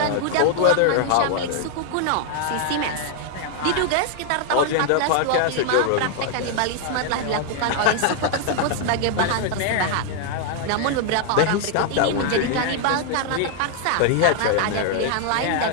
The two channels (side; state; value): both; different; correlation 0.00